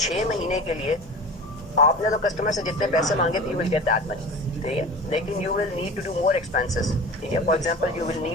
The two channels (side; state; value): both; normal; correlation 0.36